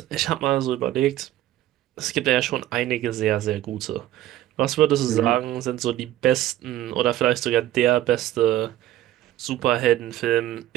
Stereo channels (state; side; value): quieter; left; 13.9 dB